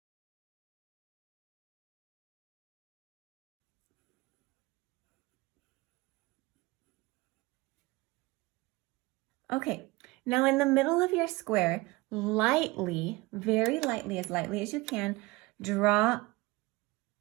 Okay, now in the middle of your square, lightly, very lightly as you can, draw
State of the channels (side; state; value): left; quieter; 22.1 dB